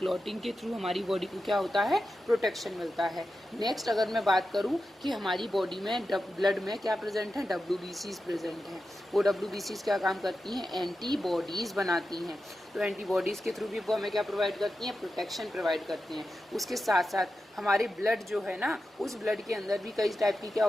के थ्रू हमारी बॉडी को क्या होता है? प्रोटेक्शन मिलता है। नेक्स्ट अगर मैं बात करूं कि हमारी बॉडी में ब्लड में क्या प्रेजेंट है? WBCs प्रेजेंट हैं। वो WBCs क्या काम करती हैं? एंटीबॉडीज बनाती हैं। तो एंटीबॉडीज़ के थ्रू भी वो हमें क्या प्रोवाइड करती हैं? प्रोटेक्शन प्रोवाइड करती हैं। उसके साथ साथ हमारे ब्लड जो है ना, उस ब्लड के अंदर भी कई टाइप की क्या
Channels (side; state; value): both; normal; correlation 0.91